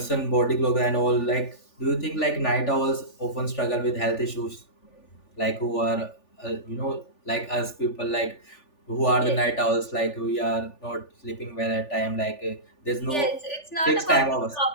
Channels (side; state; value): right; late; 3.4 ms